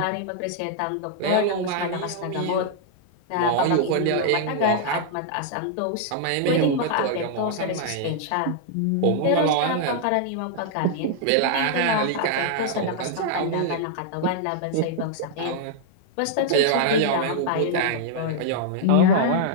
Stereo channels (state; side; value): different; both; correlation -0.01